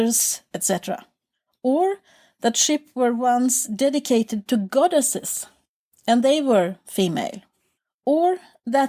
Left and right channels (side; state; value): both; identical; correlation 1.00